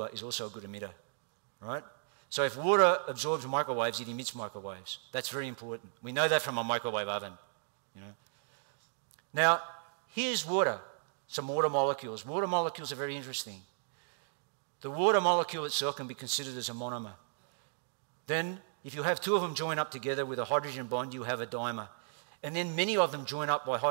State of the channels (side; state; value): left; silent; digital silence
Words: is also a good emitter, right? So if water absorbs microwaves, it emits microwaves. That's very important. We know that from a microwave oven, you know. Now, here's water, some water molecules. Water molecules are very interesting. The water molecule itself can be considered as a monomer. Then, if you have 2 of them join up together with a hydrogen bond, you have a dimer. And then many of them join up by